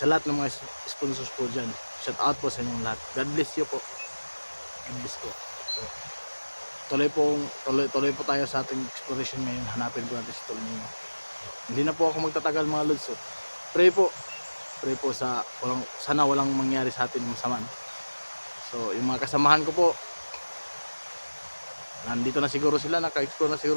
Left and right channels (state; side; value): inverted; both; correlation -1.00